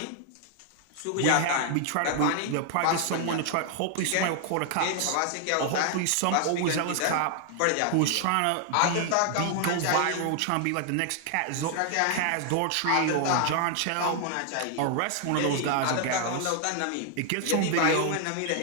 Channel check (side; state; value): both; different; correlation 0.00